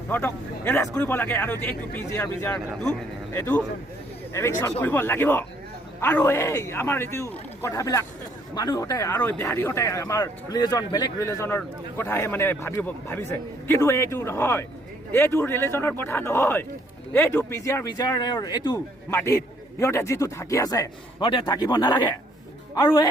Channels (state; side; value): normal; both; correlation 0.66